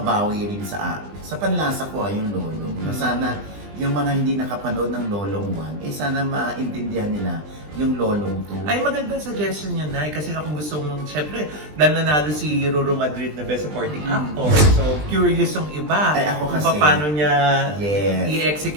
rin sa panlasa ko yung Lolong. Na sana yung mga hindi nakapanood ng Lolong 1, sana maintindihan nila yung Lolong 2. Ay, magandang suggestion yun, Nay. Kasi kung gusto mong, syempre, dahil nanalo si Ruru Madrid na Best Supporting Actor. So, curious yung iba. Ay, ako kung kasi- paano niya Yes.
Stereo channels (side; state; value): left; late; 20 ms